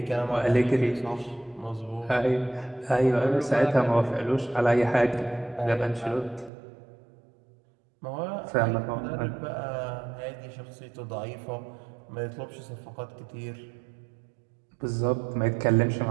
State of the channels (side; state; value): left; drops out; at 6.5 s